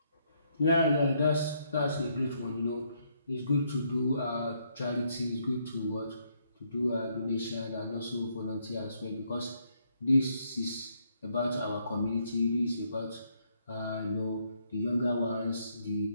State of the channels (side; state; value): both; inverted; correlation -0.73